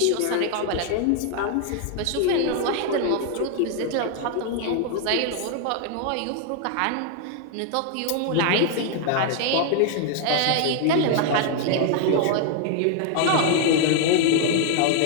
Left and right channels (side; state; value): both; different; correlation 0.00